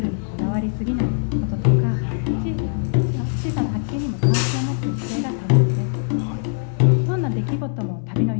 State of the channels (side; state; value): right; silent; 64 dB below the other